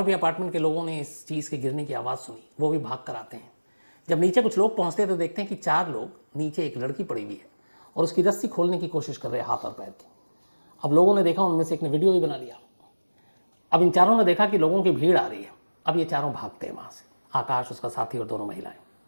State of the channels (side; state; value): both; inverted; correlation -1.00